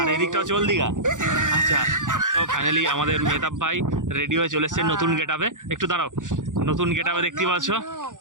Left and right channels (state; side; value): late; left; 0.87 ms